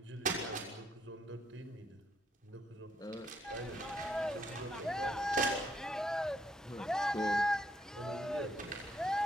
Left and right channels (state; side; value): normal; both; correlation 0.72